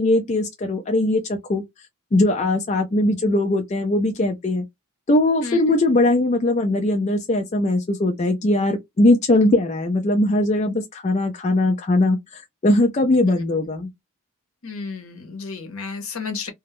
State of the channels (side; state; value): both; normal; correlation 0.56